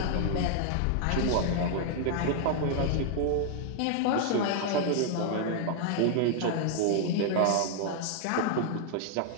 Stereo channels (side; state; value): both; different; correlation 0.00